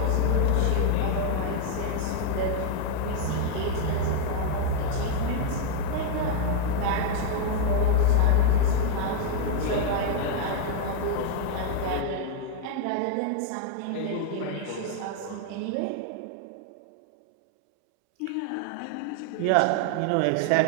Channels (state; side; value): different; both; correlation 0.00